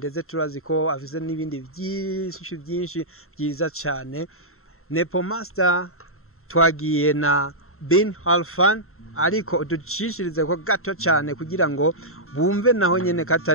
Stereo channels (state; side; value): late; right; 0.62 ms